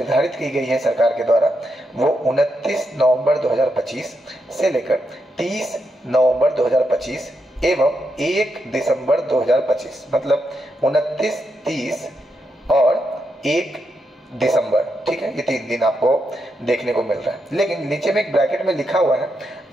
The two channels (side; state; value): both; normal; correlation 0.83